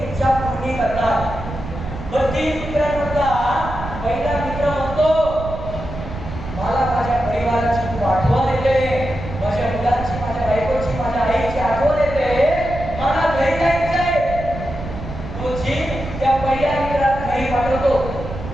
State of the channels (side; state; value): right; noise; rumble, 9 dB below the sound